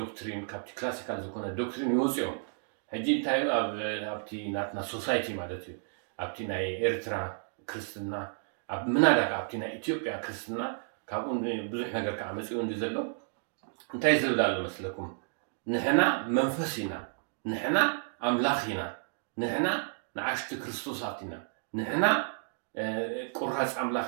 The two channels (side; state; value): left; silent; digital silence